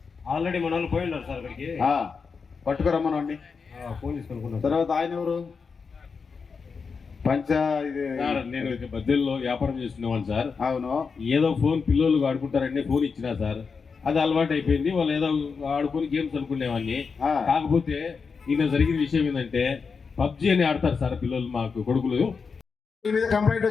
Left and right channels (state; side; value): quieter; right; 5.3 dB